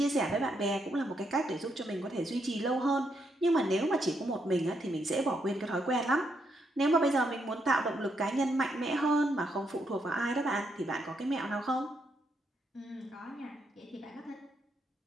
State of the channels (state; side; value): normal; both; correlation 0.78